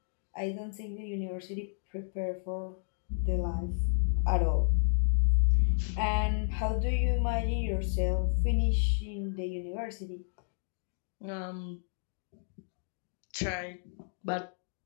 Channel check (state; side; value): silent; right; digital silence